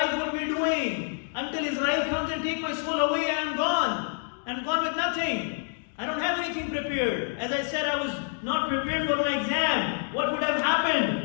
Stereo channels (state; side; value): silent; right; 60 dB below the other